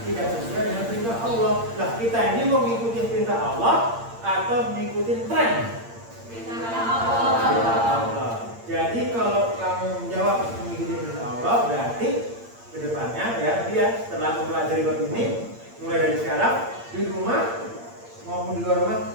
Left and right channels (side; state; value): left; late; 8.7 ms